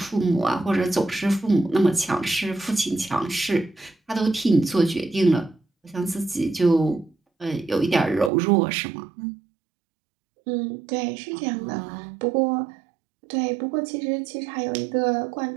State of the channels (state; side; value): drops out; left; at 8.3 s